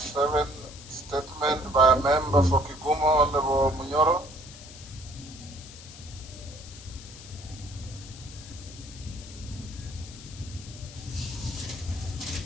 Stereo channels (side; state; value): left; noise; hiss, 16 dB below the sound